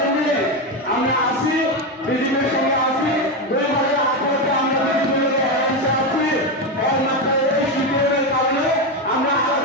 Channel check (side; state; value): both; normal; correlation 0.12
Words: আমরা আসি, বিজেপির সঙ্গে আসি, 2018-তে আমরা বিজেপির অ্যালায়েন্সে আছি। একমাত্র এই সিপিএমের কারণে আমরা